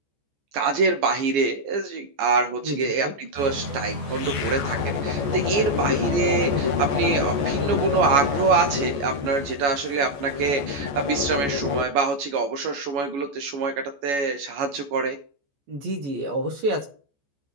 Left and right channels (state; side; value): late; left; 14 ms